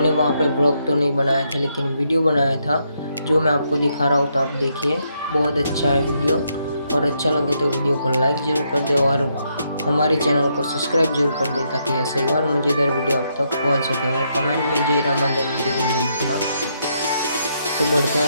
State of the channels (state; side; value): inverted; both; correlation -0.77